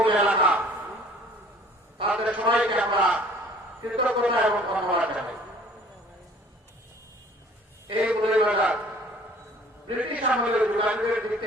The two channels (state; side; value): normal; both; correlation 0.52